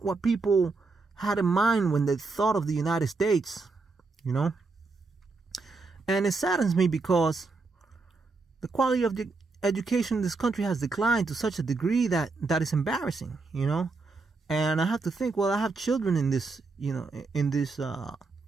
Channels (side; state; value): left; quieter; 3.9 dB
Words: what people had in mind when they thought of the United States, And it saddens me because the quality of the education in this country has declined to such a degree that is embarrassing, And I have to think, well, I have children in this, in